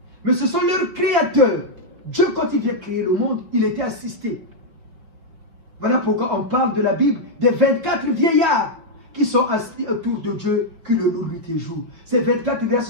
Mais ce sont leurs créateurs. Dieu, quand il vient créer le monde, il était assisté. Voilà pourquoi on parle de la Bible des 24 vieillards qui sont assis autour de Dieu, qui le louent nuit et jour. Ces 24 vieillards,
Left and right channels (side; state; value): left; late; 5.9 ms